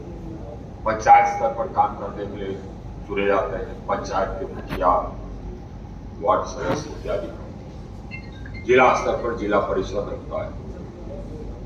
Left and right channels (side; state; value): both; identical; correlation 1.00